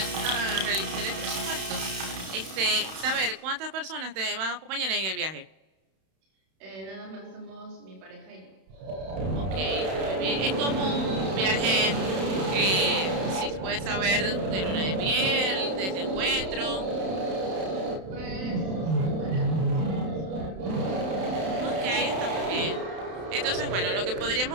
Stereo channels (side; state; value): left; late; 31 ms